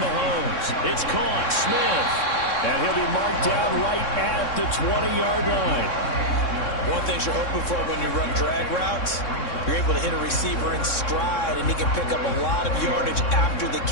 It's caught. Smith. And he'll be marked down right at the 20-yard line. One thing you're hoping for when you run drag routes, you're able to hit a receiver in stride, and he can pick up a lot of yardage after the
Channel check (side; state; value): right; late; 3.6 ms